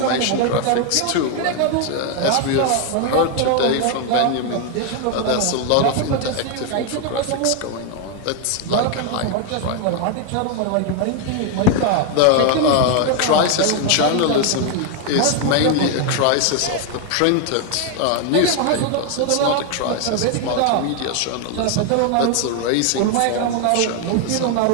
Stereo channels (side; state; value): both; different; correlation 0.01